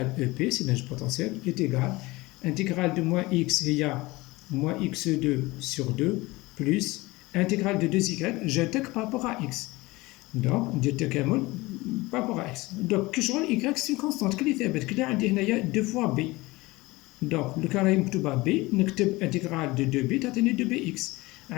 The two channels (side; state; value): right; quieter; 21.3 dB